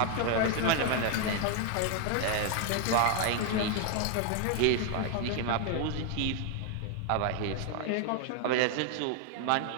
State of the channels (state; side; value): different; both; correlation 0.00